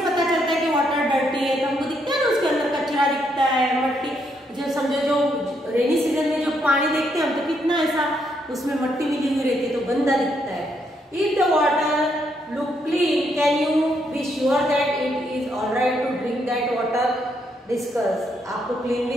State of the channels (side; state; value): both; normal; correlation 0.75